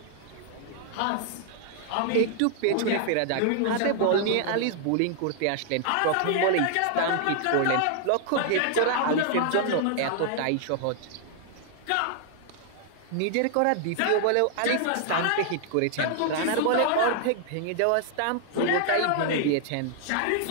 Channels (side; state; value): both; different; correlation 0.00